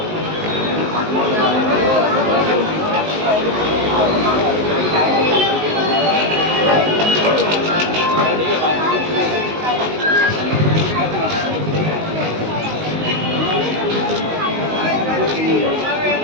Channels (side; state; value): left; late; 19 ms